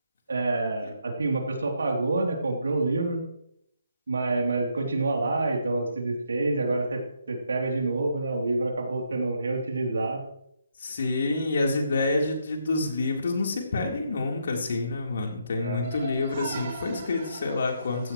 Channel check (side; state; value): both; inverted; correlation -0.77